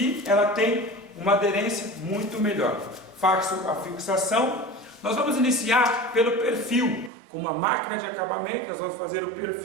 ela tem uma aderência muito melhor. Faço a fixação. Nós vamos iniciar pelo perfil. Com uma máquina de acabamento, nós vamos fazer o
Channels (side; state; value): left; drops out; at 7.1 s